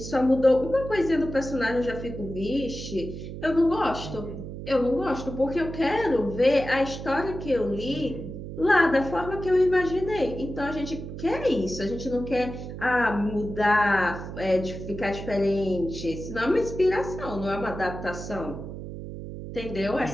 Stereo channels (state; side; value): noise; right; hum, 9 dB below the sound